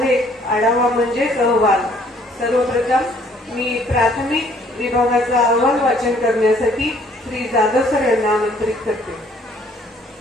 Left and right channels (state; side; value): normal; both; correlation 0.61